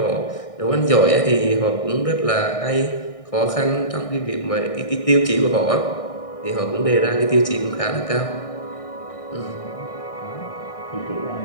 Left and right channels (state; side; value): late; right; 1.6 ms